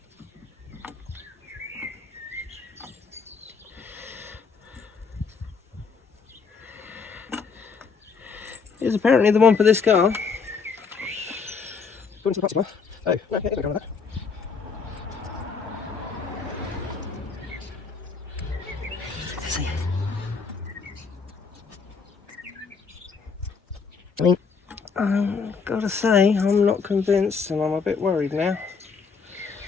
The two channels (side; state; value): right; quieter; 5.3 dB